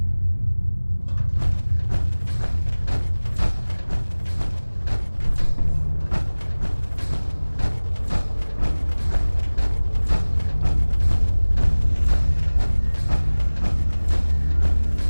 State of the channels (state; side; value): inverted; both; correlation -1.00